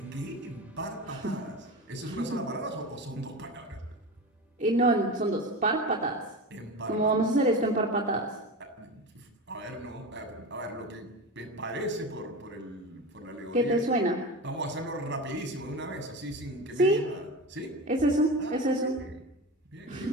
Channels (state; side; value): normal; both; correlation 0.26